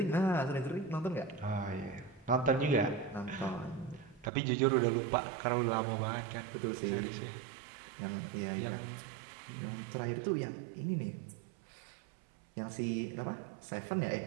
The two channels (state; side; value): drops out; left; at 4.3 s